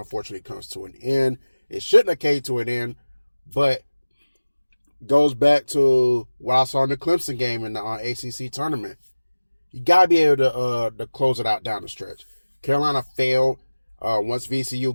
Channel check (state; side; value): inverted; both; correlation -1.00